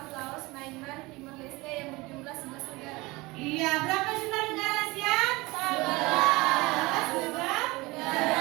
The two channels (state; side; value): quieter; left; 22.6 dB